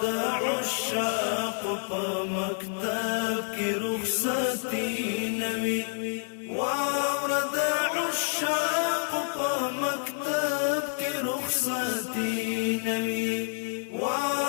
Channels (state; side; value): silent; right; 59 dB below the other